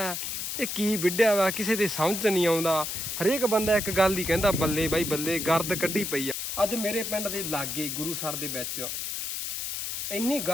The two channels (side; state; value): left; noise; hiss, 4 dB below the sound